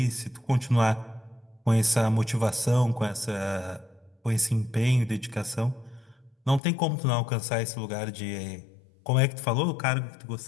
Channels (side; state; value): right; drops out; at 6.6 s